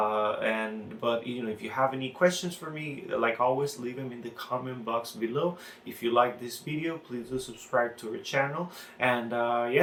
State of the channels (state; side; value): identical; both; correlation 1.00